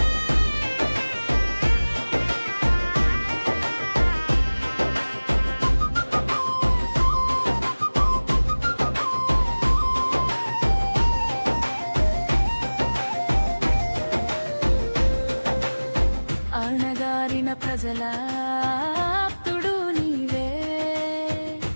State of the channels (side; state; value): both; inverted; correlation -1.00